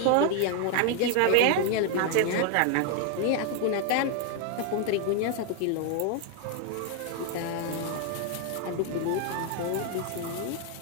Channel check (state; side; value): different; both; correlation 0.00